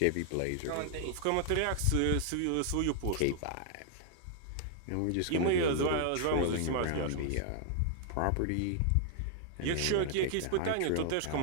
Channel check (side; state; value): both; different; correlation 0.00